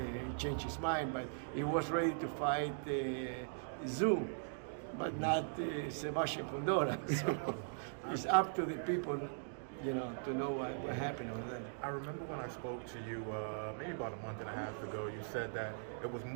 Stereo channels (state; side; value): silent; left; digital silence